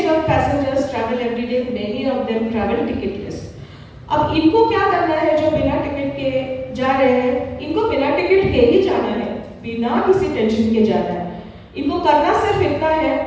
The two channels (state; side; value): identical; both; correlation 1.00